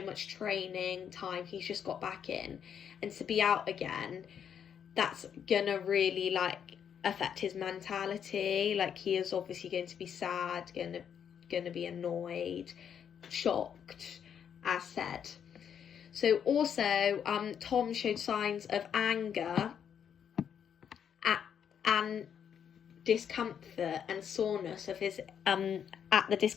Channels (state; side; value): quieter; right; 8.2 dB